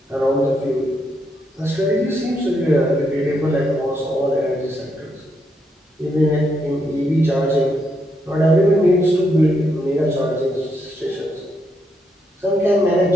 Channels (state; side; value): normal; both; correlation 0.78